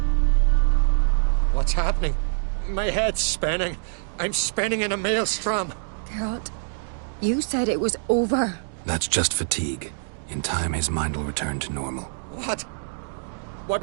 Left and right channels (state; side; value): silent; left; digital silence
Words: What's happening? My head's spinning. I'm spinning in a maelstrom. Geralt, you said it was over. That's just fatigue. In time, his mind will return to normal. What? What